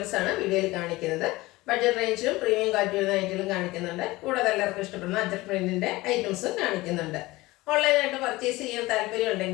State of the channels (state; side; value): quieter; right; 20.0 dB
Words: വീഡിയോയിൽ കാണിക്കുന്നത്. ബഡ്ജറ്റ് റേഞ്ചിലും പ്രീമിയം ക്വാളിറ്റി വരുന്ന ഐറ്റങ്ങളും കാണിക്കുന്നുണ്ട്. കൂടാതെ എല്ലാവർക്കും ഇഷ്ടപ്പെടുന്ന അജറ്റ് പ്രിന്റിൻ്റെ ഐറ്റംസും കാണിക്കുന്നുണ്ട്. ഓൺലൈനായിട്ട് പർച്ചേസ് ചെയ്യാൻ താല്പര്യം